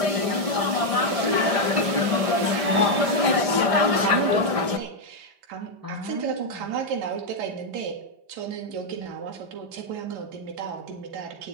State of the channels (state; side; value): late; left; 5.0 ms